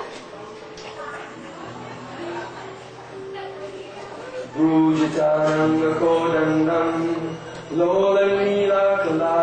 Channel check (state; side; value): identical; both; correlation 1.00